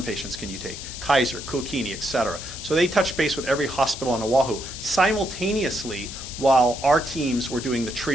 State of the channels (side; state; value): left; noise; hiss, 10 dB below the sound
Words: patients can you take? Kaiser, Kuakini, et cetera. So they touched base with every hospital on Oahu simultaneously while our teams were doing the